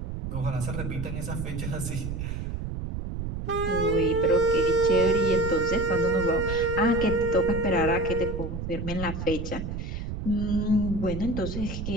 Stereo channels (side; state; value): right; noise; rumble, 5 dB below the sound